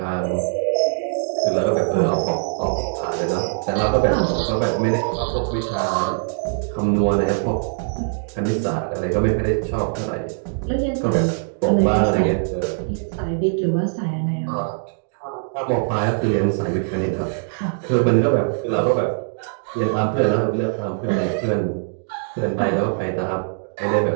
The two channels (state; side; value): silent; left; digital silence